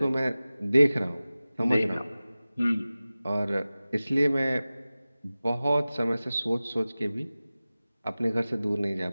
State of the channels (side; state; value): both; inverted; correlation -0.97